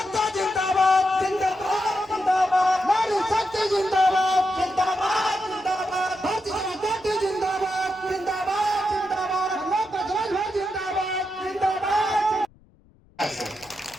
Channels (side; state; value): left; noise; rumble, 29 dB below the sound